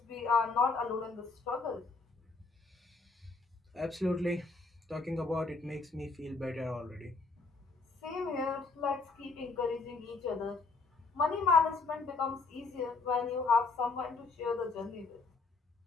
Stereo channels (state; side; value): quieter; right; 4.0 dB